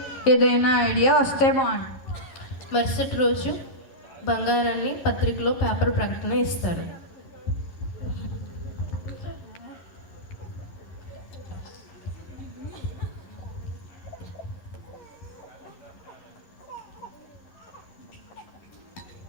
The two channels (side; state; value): right; late; 11 ms